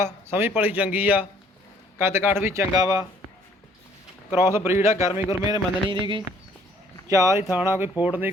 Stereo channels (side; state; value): both; normal; correlation 0.60